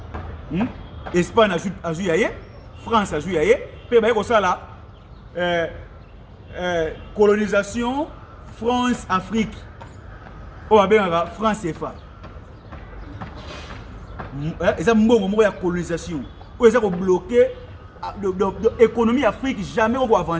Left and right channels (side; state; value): both; identical; correlation 1.00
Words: Espagne a joué, France a joué, puis comme ça là, colonisation, France, Afrique, on va bien France et FA. Et ça, il y a colonisation, ils ont bloqué l'économie Afrique, jamais on va